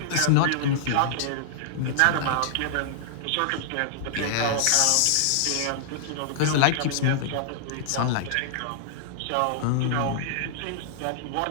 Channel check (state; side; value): different; both; correlation -0.01